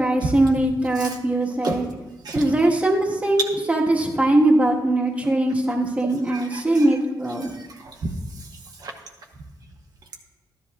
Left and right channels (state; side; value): normal; both; correlation 0.86